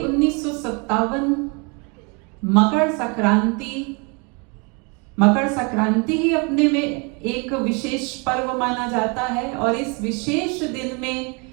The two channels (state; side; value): quieter; left; 32.2 dB